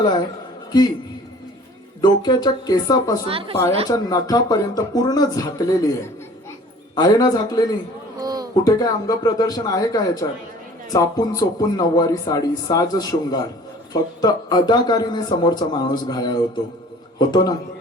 आहे की डोक्याच्या केसापासून पायाच्या नखापर्यंत पूर्ण झाकलेली आहे ना? झाकलेली? कुठे काय अंग प्रदर्शन आहे का याच्यात? चापून चोपून नऊवारी साडी, साज शृंगार, फक्त अदाकारीने समोरचा माणूस घायाळ होतो ना?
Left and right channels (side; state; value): both; normal; correlation 0.49